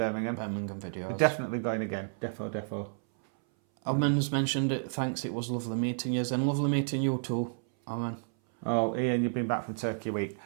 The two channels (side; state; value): left; silent; 57 dB below the other